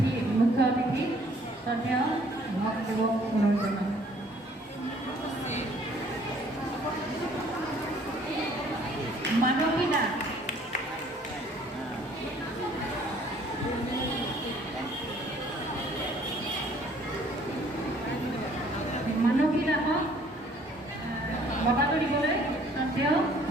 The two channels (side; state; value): both; normal; correlation 0.59